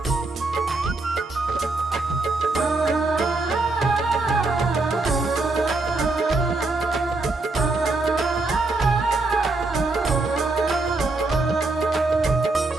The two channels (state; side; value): quieter; left; 3.3 dB